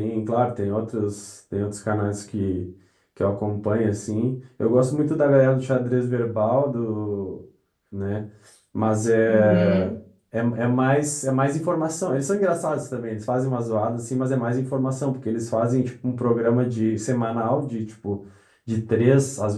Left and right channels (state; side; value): identical; both; correlation 1.00